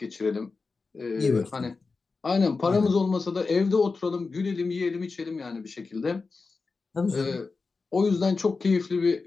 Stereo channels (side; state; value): right; quieter; 4.2 dB